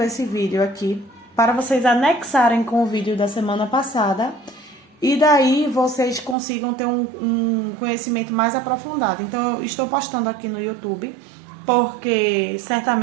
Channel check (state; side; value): drops out; left; at 6.4 s